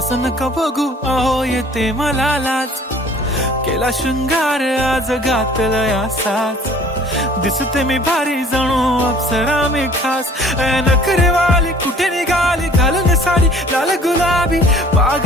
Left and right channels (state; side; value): normal; both; correlation 0.52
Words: नका बघू अहो येते मला लाज. केला शृंगार आज घातलंय असाच, दिसते मी भारी जणू अप्सरा मी खास. नखरेवाली कुठे निघाली घालून साडी लाल गुलाबी,